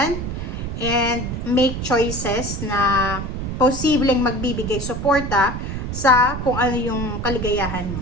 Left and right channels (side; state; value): right; noise; rumble, 5 dB below the sound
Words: and make choices na posibleng magbibigay suporta sa kung ano yung kaligayahan